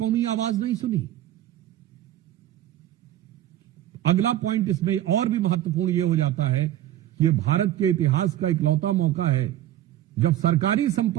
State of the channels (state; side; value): quieter; left; 13.0 dB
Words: आवाज नहीं सुनी। अगला पॉइंट इसमें और भी महत्वपूर्ण यह हो जाता है कि यह भारत के इतिहास का इकलौता मौका है जब सरकारी